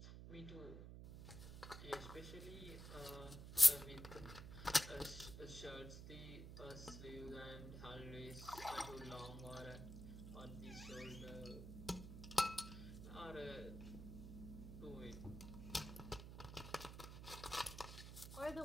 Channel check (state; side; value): noise; right; hum, 9 dB below the sound